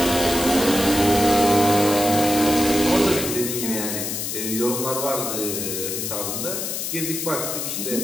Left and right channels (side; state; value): left; noise; hiss, 3 dB below the sound